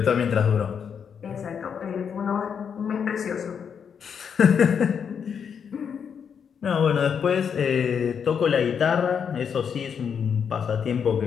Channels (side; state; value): right; quieter; 7.2 dB